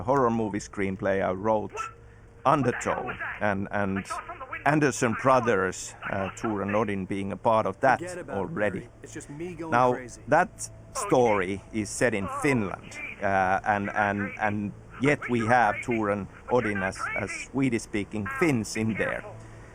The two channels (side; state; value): both; identical; correlation 1.00